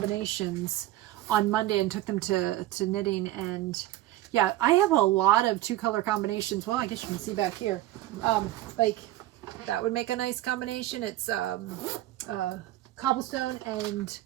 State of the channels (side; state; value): left; quieter; 15.3 dB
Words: on Monday and took them to knitting, and yeah, I have a lot of 2-color combinations. Well, I guess you can see back here, like that would make a nice combination. It's Cobblestone and